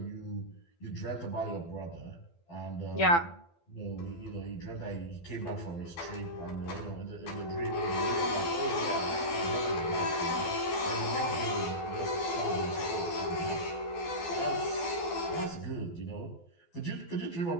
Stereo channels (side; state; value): right; late; 12 ms